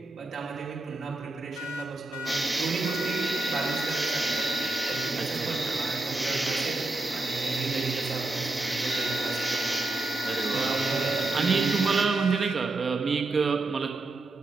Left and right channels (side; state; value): left; quieter; 3.1 dB